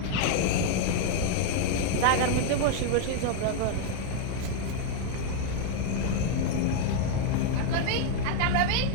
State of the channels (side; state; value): both; different; correlation 0.00